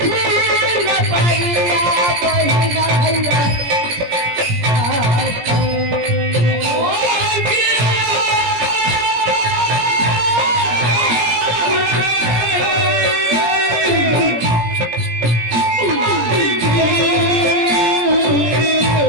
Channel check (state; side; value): late; left; 17 ms